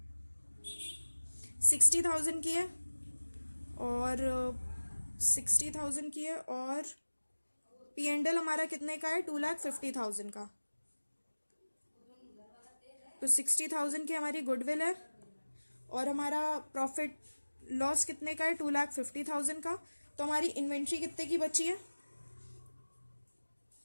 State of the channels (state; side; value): inverted; both; correlation -1.00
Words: 60,000 की है, और 60,000 की है, और P&L हमारा कितने का है? 2,50,000 का। तो 60,000 की हमारी गुडविल है, और हमारा प्रॉफिट लॉस कितने का है? 2,50,000 का। तो हमारी इन्वेंट्री कितने की बची है?